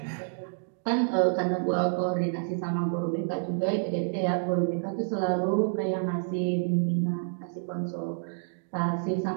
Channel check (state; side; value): silent; left; digital silence